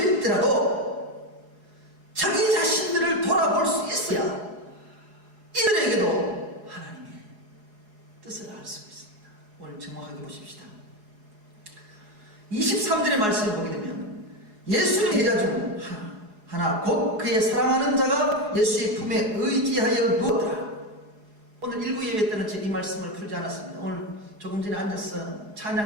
자기 자신들을 돌아볼 수 있어야 이들에게도 하나님의 뜻을 알 수 있습니다. 오늘 정확하게 보십시다. 23절의 말씀을 보게 되면 예수님 제자 중 하나 곧 그의 사랑하는 자가 예수의 품에 의지하여 누웠더라. 오늘 일부 예배 때는 이 말씀을 풀지 않았습니다. 오늘 조금 전에 앉아서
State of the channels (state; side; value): late; left; 4.8 ms